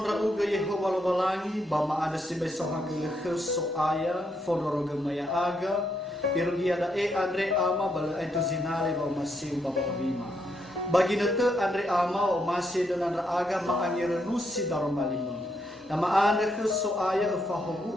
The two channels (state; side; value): normal; both; correlation 0.78